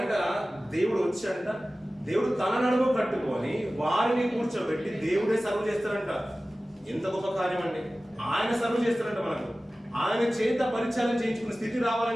దేవుడు వచ్చాడంట. దేవుడు తన నడుము కట్టుకొని వారిని కూర్చోబెట్టి దేవుడే సర్వ్ చేస్తారంట. ఎంత గొప్ప కార్యం అండి! ఆయన సర్వ్ చేస్తారంట మనకు. ఆయన చేత పరిచారం చేయించుకునే స్థితి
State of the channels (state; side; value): normal; both; correlation 0.96